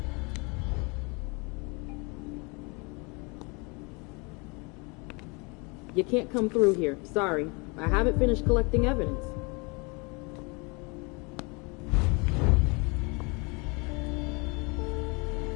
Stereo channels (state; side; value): quieter; right; 30.1 dB